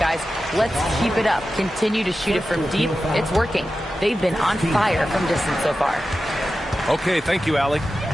let's keep it up. Continue to shoot it from deep. It's working. They've been on fire from distance so far. Okay, thank you, Allie.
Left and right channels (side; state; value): both; normal; correlation 0.93